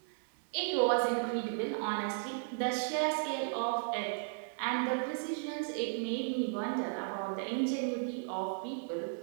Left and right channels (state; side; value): silent; left; digital silence